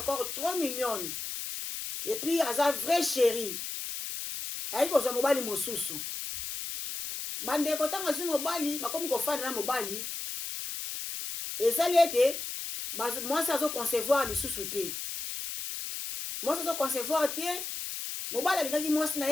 trop mignonne et puis aza vrai chéri ayi kozwa mobali mosusu bandeko ntango azwi mobali bakomi kofanda na mobali ezali ete mwasi azoconcevoir lisusu te mwasi azoconcevoir te mobali alingaki mwasi na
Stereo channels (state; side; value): noise; left; hiss, 6 dB below the sound